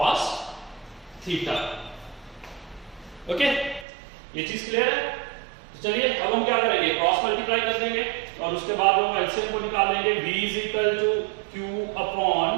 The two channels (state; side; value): drops out; left; at 3.9 s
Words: theta, okay, ये चीज क्लियर है। चलिए अब हम क्या करेंगे, क्रॉस मल्टीप्लाई कर देंगे और उसके बाद हम एलसीएम को निकाल लेंगे। v is equal to q